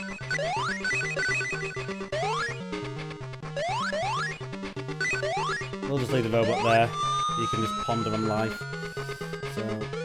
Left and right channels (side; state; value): both; identical; correlation 1.00